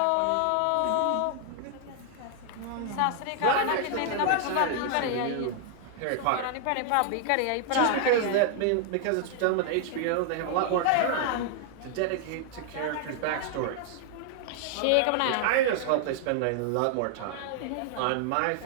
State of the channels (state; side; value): different; both; correlation 0.00